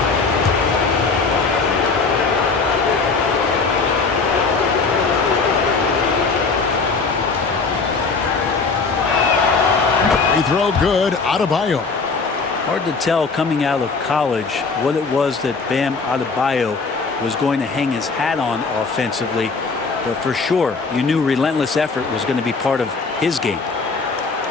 Free throw good. Adebayo. Hard to tell coming out of college what it was that Bam Adebayo was going to hang his hat on offensively. But for sure, you knew relentless effort was going to be part of his game.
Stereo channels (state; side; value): quieter; right; 4.5 dB